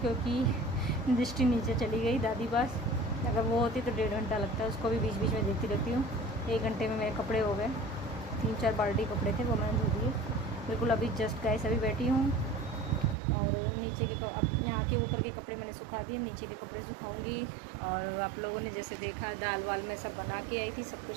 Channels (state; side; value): drops out; left; at 13.2 s